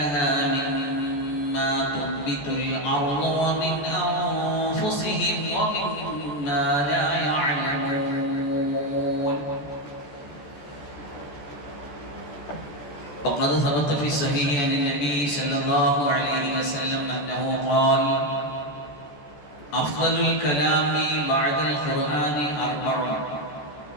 مما تنبت الأرض ومن أنفسهم ومما لا يعلمون. وقد ثبت في الصحيح عن النبي صلى الله عليه وسلم أنه قال: أفضل الكلام بعد القرآن أربع،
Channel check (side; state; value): right; late; 14 ms